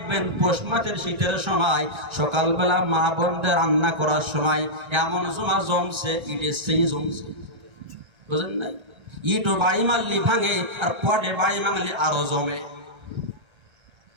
পৌষ মাসের শীতের সময় সকালবেলা মা বোনদের রান্না করার সময় এমন জমা জমছে, ইটের সেই জমছে, বুঝলেন নাই? ইটও বাড়ি মারলি ভাঙে, আর পটে বাড়ি মারলি আরো জমে।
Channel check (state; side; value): late; left; 1.8 ms